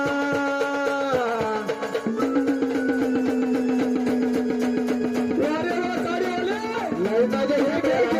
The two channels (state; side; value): identical; both; correlation 1.00